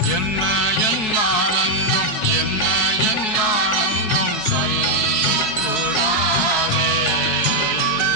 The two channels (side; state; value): right; late; 4.6 ms